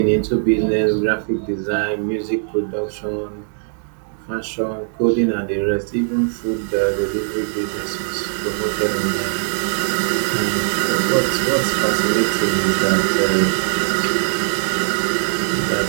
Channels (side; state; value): left; silent; digital silence